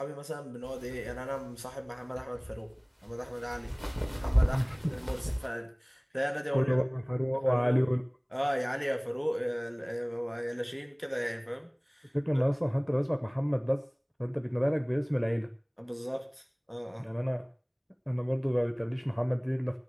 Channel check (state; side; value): identical; both; correlation 1.00